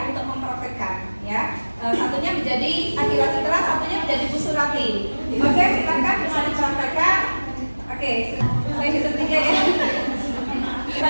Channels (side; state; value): both; inverted; correlation -1.00